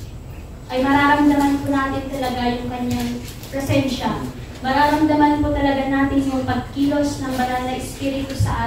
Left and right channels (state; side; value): identical; both; correlation 1.00